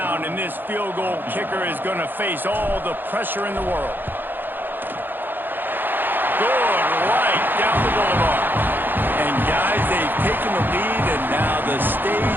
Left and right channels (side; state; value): left; late; 0.093 ms